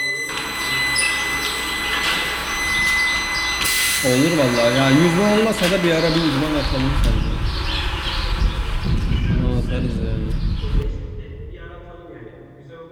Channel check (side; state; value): both; identical; correlation 1.00